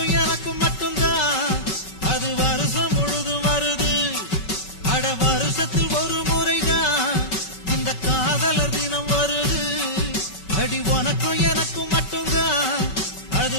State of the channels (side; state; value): right; late; 5.3 ms